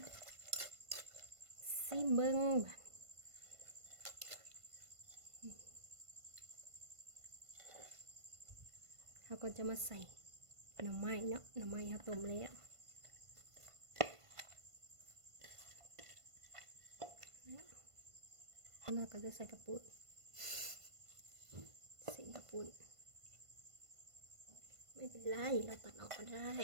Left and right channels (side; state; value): left; late; 1.5 ms